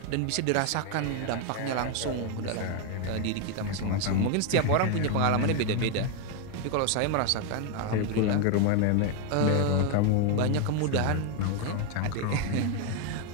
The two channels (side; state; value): both; different; correlation 0.01